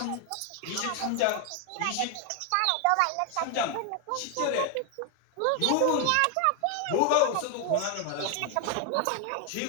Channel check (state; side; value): different; both; correlation 0.01